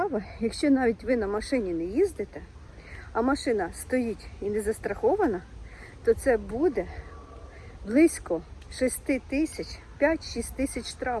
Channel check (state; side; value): identical; both; correlation 1.00